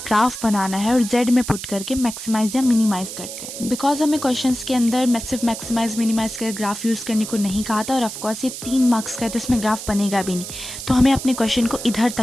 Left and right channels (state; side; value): noise; right; hiss, 9 dB below the sound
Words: ग्राफ बनाना है और z में पुट करके मैक्सिमाइज या मिनिमाइज करते हैं। बिकॉज हमें क्वेश्चंस के अंदर सिर्फ मैक्सिमाइज मिनिमाइज कर ग्राफ यूज़ करने को नहीं कहा था, और ऑफकोर्स ये 3 मार्क्स का है तो इसमें ग्राफ बनेगा भी नहीं। तो हमें अपने क्वेश्चन को इधर